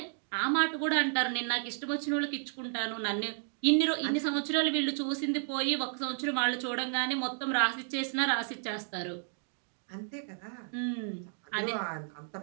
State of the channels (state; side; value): silent; left; 56 dB below the other